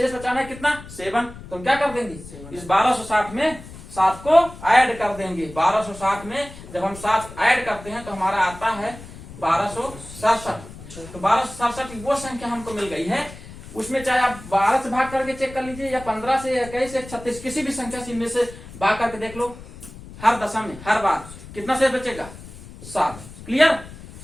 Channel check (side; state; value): left; noise; rumble, 16 dB below the sound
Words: बचाना है कितना 7, तो हम क्या कर देंगे इस 1260 में 7 को ऐड कर देंगे। 1260 में जब हम 7 ऐड करते हैं तो हमारा आता है 1267। तो 1267 वो संख्या हमको मिल गई है, उसमें चाहे आप 12 से भाग करके चेक कर लीजिए या 15 से या 21 से 36 किसी भी संख्या से इनमें से भाग करके देख लो, हर दशा में हर बार कितना शेष बचेगा 7। क्लियर,